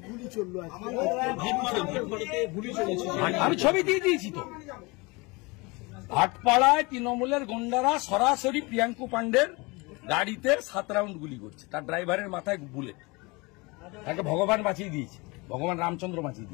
আমি ছবি দিয়ে দিয়েছি তো। ভাটপাড়ায় তৃণমূলের গুন্ডারা সরাসরি প্রিয়াঙ্কু পান্ডের গাড়িতে 7 রাউন্ড গুলি করছে, তার ড্রাইভারের মাথায় বুলেট। তাকে ভগবান বাঁচিয়ে দিয়েছে, ভগবান রামচন্দ্র বাঁচিয়ে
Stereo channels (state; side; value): quieter; right; 26.1 dB